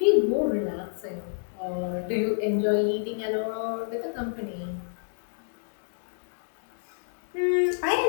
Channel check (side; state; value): right; silent; digital silence